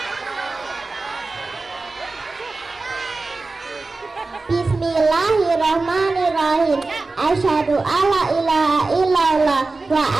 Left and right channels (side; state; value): left; quieter; 3.6 dB